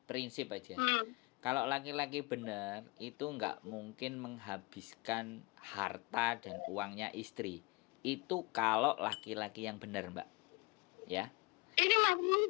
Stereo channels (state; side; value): quieter; right; 25.6 dB